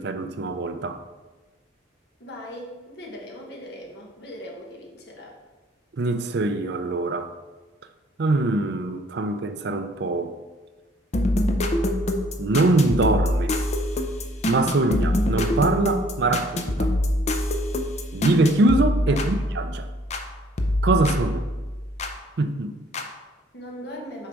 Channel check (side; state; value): both; normal; correlation 0.60